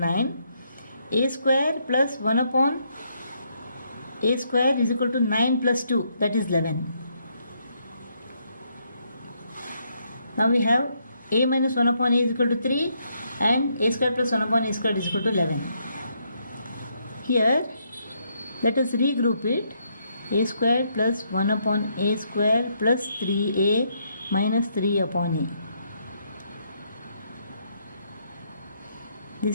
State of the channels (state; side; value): inverted; both; correlation -0.74